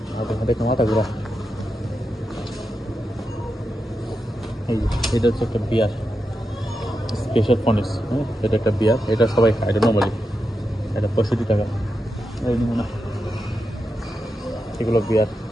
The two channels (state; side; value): normal; both; correlation 0.88